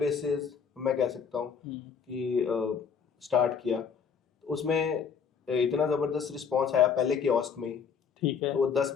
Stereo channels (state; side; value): quieter; right; 6.5 dB